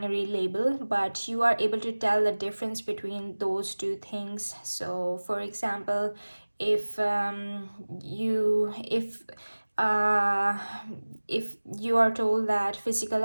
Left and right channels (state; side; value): inverted; both; correlation -1.00